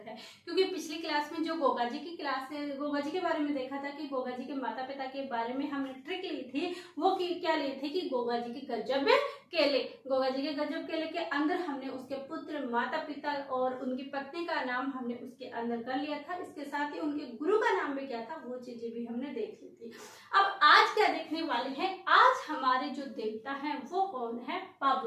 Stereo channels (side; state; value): both; identical; correlation 1.00